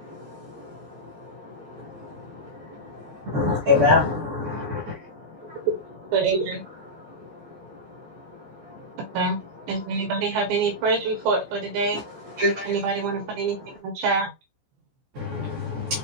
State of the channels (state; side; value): late; left; 14 ms